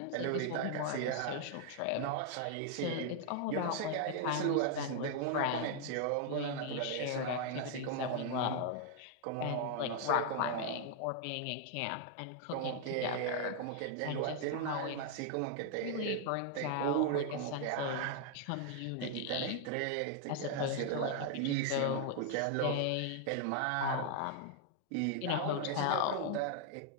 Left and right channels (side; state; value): both; different; correlation 0.00